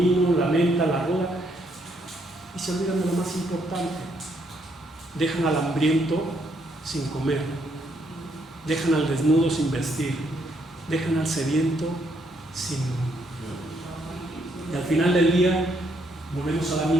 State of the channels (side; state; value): both; normal; correlation 0.73